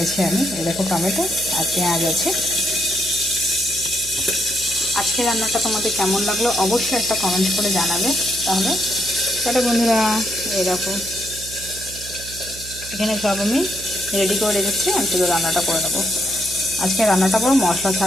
আমি। এই দেখো টমেটো আর পেঁয়াজ আছে। আজকে রান্নাটা তোমাদের কেমন লাগলো অবশ্যই একটা কমেন্ট করে জানাবে। তাহলে বন্ধুরা, এই দেখো এখানে সব আমি রেডি করে রেখেছি, আমি শুধু রান্নাটা করে নেবো। আজকে রান্নাটা পুরো মশলা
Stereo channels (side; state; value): right; noise; hum, 15 dB below the sound